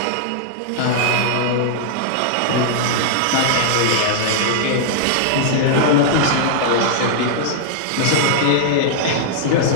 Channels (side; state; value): both; different; correlation -0.01